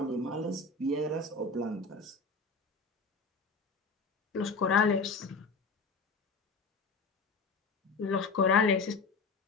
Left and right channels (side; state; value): right; quieter; 4.0 dB